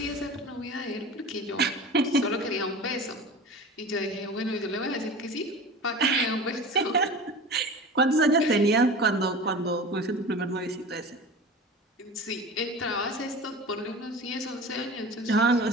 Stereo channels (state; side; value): normal; both; correlation 0.35